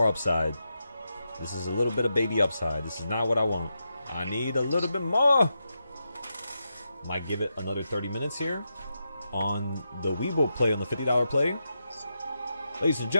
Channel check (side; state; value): both; inverted; correlation -0.86